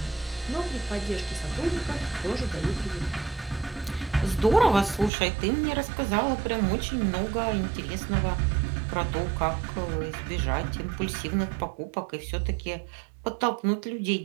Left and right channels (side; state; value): left; drops out; at 5.1 s